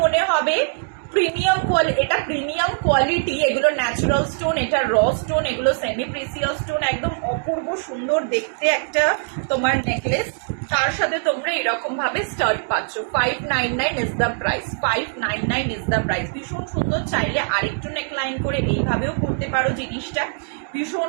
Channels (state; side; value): silent; left; digital silence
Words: মনে হবে প্রিমিয়াম কোয়ালিটি। এটা প্রিমিয়াম কোয়ালিটি, এগুলো ন্যাচারাল স্টোন, এটা র স্টোন, এগুলো সেমি প্রিসিয়াস স্টোন। একদম অপূর্ব সুন্দর দেখতে একটা তোমার নেকলেস। তার সাথে তোমরা এরকম ভাবে স্টার্ট পাচ্ছ। 599 is the price, 599 is the price. ভীষণ সুন্দর। চাইলে আরেকটু নেকলাইন করে এইভাবেও করতে পারো জিনিসটা,